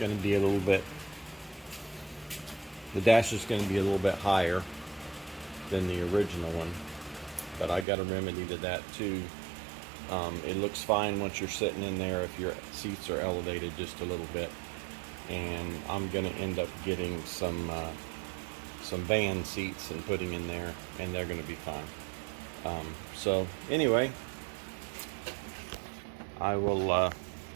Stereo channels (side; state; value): left; drops out; at 7.9 s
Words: to be a little bit higher than the original one, but I got a remedy to that too. It looks fine once you're sitting in there if your seats are elevated just a little bit. And I'm going to end up getting some van seats and putting in there, and they're going to be fine. So anyway, I'll